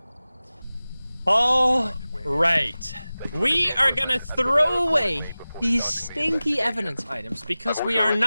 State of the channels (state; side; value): inverted; both; correlation -0.97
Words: All right. We are gonna throw away these stinky evidence items because we are